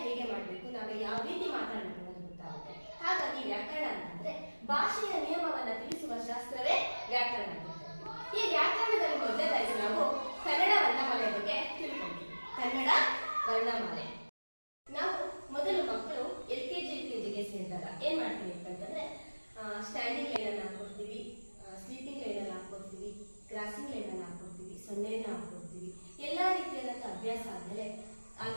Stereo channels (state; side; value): inverted; both; correlation -1.00